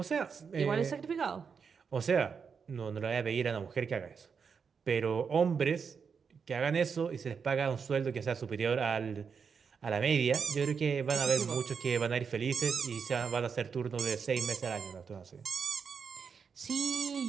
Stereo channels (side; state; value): left; quieter; 6.1 dB